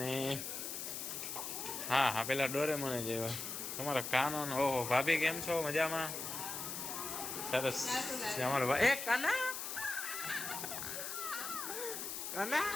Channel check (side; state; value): left; noise; hiss, 5 dB below the sound